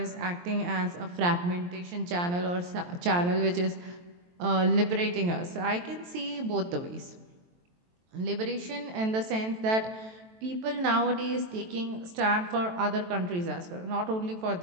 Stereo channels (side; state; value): left; late; 23 ms